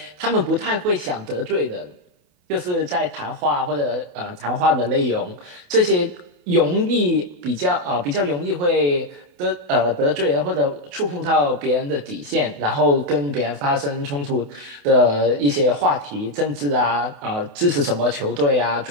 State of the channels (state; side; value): late; left; 28 ms